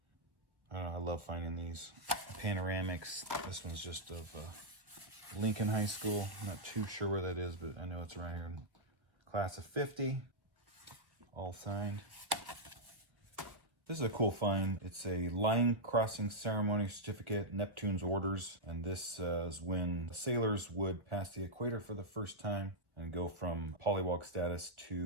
I don't know, I love finding these panoramics. This one's just of Lincoln High School. I'm not too sure where that is, but I know it's right here in class of 50. All signed. This is a cool find. It's a line crossing ceremony certificate, Neptune's orders. And this is when the sailors would pass the equator for the first time and go from polywog status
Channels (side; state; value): left; late; 1.4 ms